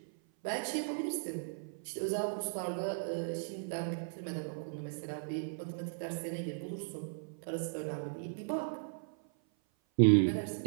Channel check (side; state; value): left; silent; 53 dB below the other